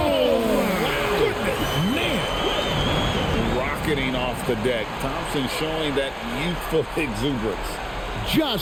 goodness, man. Rocketing off the deck. Thompson showing that youthful exuberance.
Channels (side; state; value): both; identical; correlation 1.00